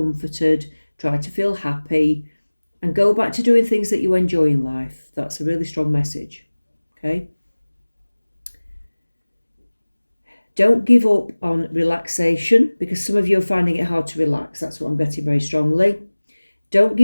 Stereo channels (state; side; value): inverted; both; correlation -1.00